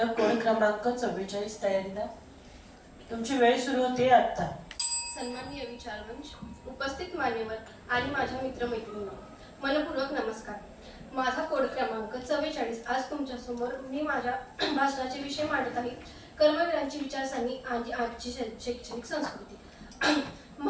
कोड क्रमांक 44 तयारीला. तुमची वेळ सुरू होते आता. सन्माननीय विचारवंश, उपस्थित मान्यवर आणि माझ्या मित्रमैत्रिणींना मनपूर्वक नमस्कार. माझा कोड क्रमांक 44. आज तुमच्यासमोर मी माझ्या भाषणाचे विषय मांडत आहे. कर्मवीरांची विचारसरणी आणि आजची शैक्षणिक संस्कृती.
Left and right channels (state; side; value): identical; both; correlation 1.00